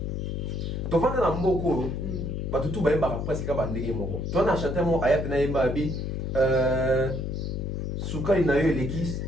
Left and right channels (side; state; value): left; noise; hum, 3 dB below the sound